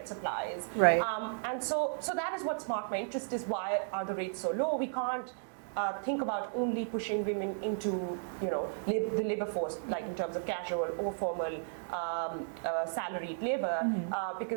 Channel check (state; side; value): silent; left; digital silence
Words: supplies. Right. And so that is what sparked my interest, is why are the rates so low? We can't think about only pushing women into the labor force, in terms of casual or formal salaried labor,